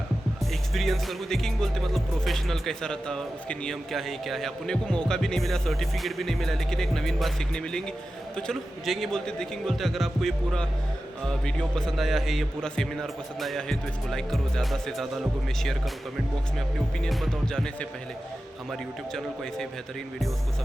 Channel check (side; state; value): both; normal; correlation 0.93